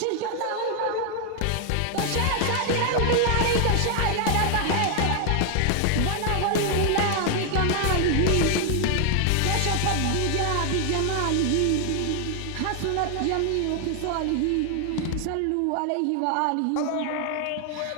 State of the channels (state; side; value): different; both; correlation 0.00